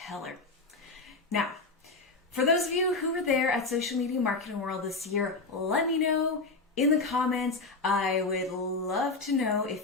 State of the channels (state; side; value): quieter; right; 3.6 dB